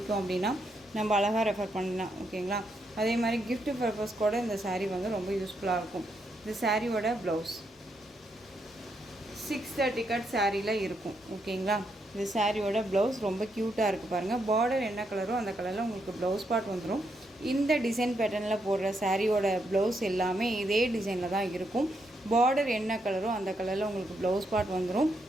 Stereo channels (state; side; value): normal; both; correlation 0.79